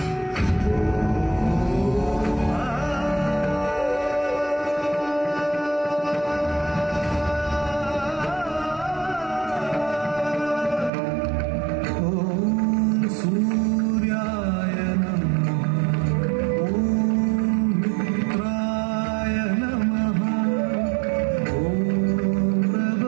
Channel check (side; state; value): left; drops out; at 10.9 s